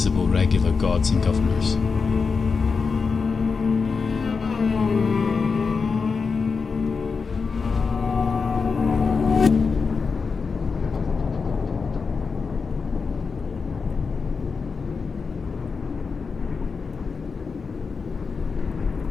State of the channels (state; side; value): quieter; right; 5.0 dB